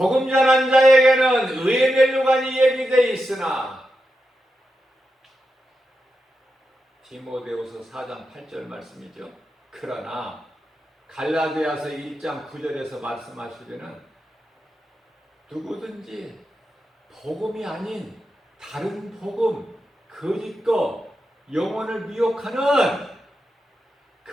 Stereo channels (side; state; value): both; normal; correlation 0.88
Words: 전한 자에게는 의의 멸류관이 예비되어 있으나 디모데후서 4장 8절 말씀이죠. 그러나 갈라디아서 1장 9절에서 말씀하시기는 누구든지 복음이 아닌 다른 복음, 거짓거, 영혼을 미혹하는